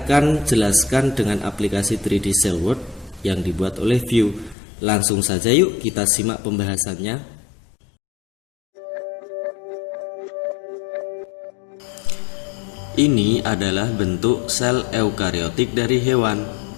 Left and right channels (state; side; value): drops out; right; at 4.5 s